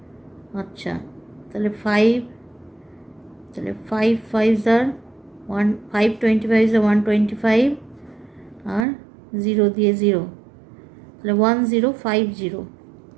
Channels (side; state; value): left; drops out; at 8.8 s